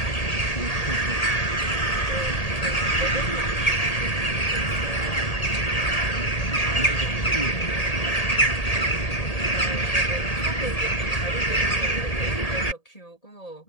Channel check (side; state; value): right; late; 1.8 ms